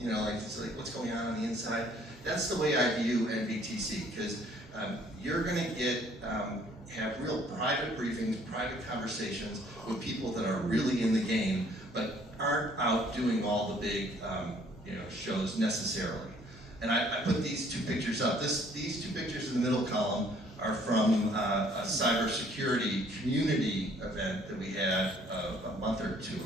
know, like, it's like what's going on the inside? That's the way I view NBTC, because you're going to have real private briefings, private conversations with people that are really in the game, but aren't out doing all the big shows necessarily. And I put these two pictures up. These two pictures in the middle column are from a cybersecurity community event that we had a month or two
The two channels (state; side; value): normal; both; correlation 0.60